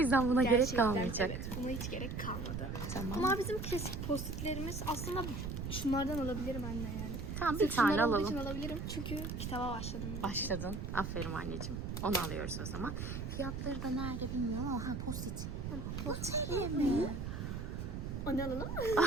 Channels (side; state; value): right; noise; rumble, 5 dB below the sound